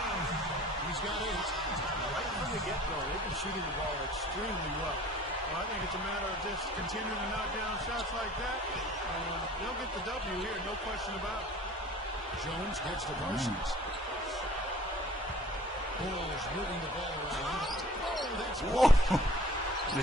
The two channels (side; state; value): both; normal; correlation 0.49